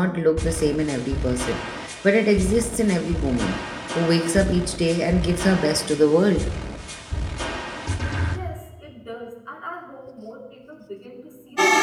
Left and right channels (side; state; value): both; identical; correlation 1.00